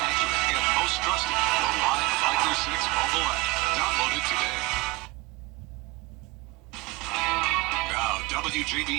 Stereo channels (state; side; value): quieter; left; 21.8 dB